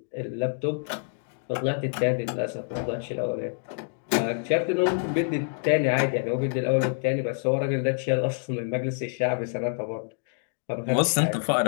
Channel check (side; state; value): right; silent; digital silence